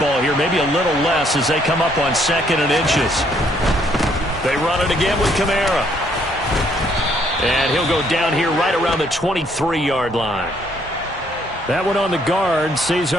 here, maybe a little less as they come up on 2nd and inches. They run it again with Kamara. And he'll go down here right around the 23-yard line. That one on the guard,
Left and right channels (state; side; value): normal; both; correlation 0.67